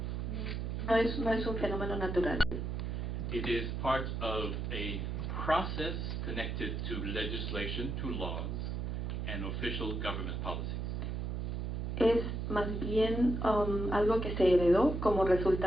No es un fenómeno natural. It is part of a process connected to legislation, to laws, and official government policies. Es más bien algo que se heredó como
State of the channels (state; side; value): noise; right; hum, 2 dB below the sound